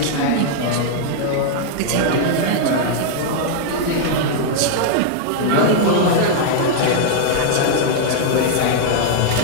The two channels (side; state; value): both; different; correlation -0.01